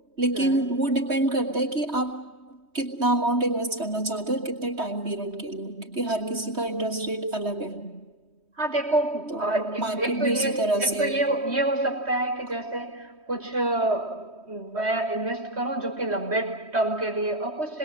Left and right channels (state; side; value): late; left; 3.1 ms